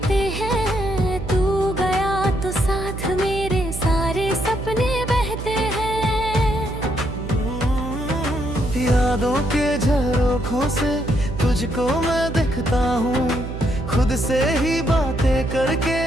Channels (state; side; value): noise; right; hum, 7 dB below the sound